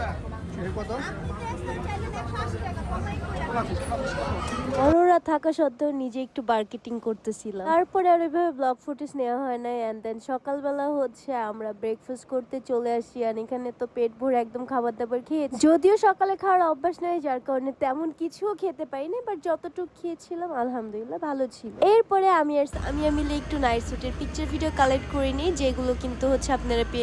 কত অরোরা থাকা সত্ত্বেও নিজে একটু মার্কেটিং করতেছিলাম তারপরে আর ওইভাবে ব্লগ ফুটেজ নেওয়া হয় না এন্ড দেন সকালবেলা হচ্ছে আমরা ব্রেকফাস্ট করতে চলে আসি আর এখানে তো পেট ভরে একদম খাবার দাবার খেয়েছি যদিও সকালে খাওয়ার অভ্যাস নাই যার কারণে তেমন কিছুও খেতে পাইনি বাট যতটুকু খেয়েছিলাম আলহামদুলিল্লাহ ভালো ছিল এরপরে আমি মিলে একটু নাইট স্যুটের পিকচার ভিডিও কালেক্ট করে নিই যেগুলো কিন্তু হচ্ছে আপনারা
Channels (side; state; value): both; identical; correlation 1.00